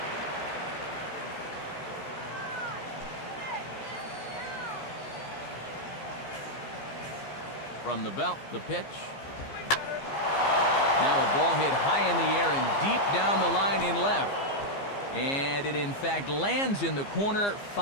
From the belt, the pitch. Now a ball hit high in the air and deep down the line in left. And it in fact lands in the corner,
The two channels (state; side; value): late; right; 15 ms